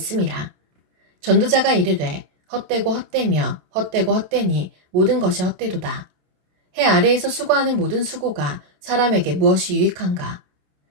전도자가 이르되 헛되고 헛되며 헛되고 헛되니 모든 것이 헛되도다. 해 아래에서 수고하는 모든 수고가 사람에게 무엇이 유익한가?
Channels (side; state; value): left; late; 27 ms